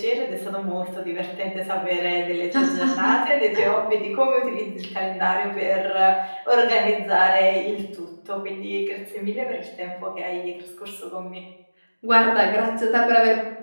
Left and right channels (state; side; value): inverted; both; correlation -1.00